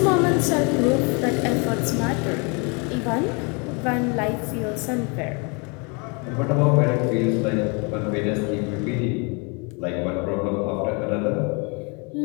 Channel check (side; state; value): right; quieter; 32.6 dB